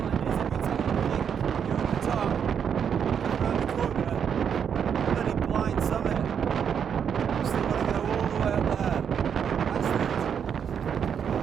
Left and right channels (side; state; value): left; quieter; 7.7 dB